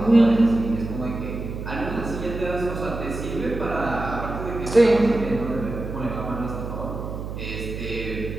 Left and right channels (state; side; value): noise; right; hum, 7 dB below the sound